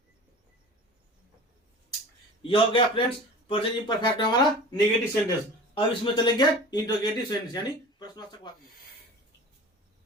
यह हो गया फ्रेंड्स प्रेजेंट इंपरफेक्ट हमारा नेगेटिव सेंटेंस। अब इसमें चलेंगे इंट्रोगेटिव सेंटेंस यानी प्रश्नवाचक वाक्य।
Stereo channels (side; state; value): both; normal; correlation 0.38